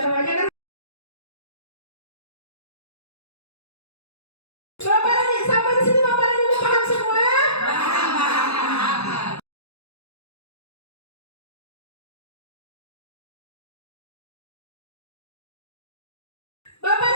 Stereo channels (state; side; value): late; right; 0.79 ms